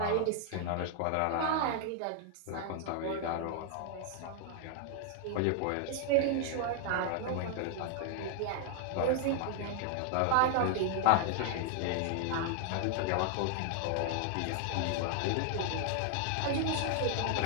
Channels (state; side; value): different; both; correlation 0.00